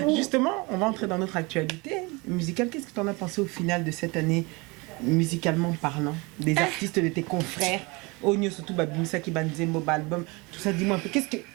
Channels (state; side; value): quieter; left; 26.3 dB